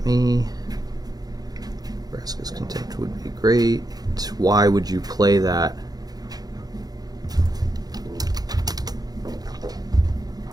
me. Vraska's Contempt would be great. Why would you play that?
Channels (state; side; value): late; left; 0.19 ms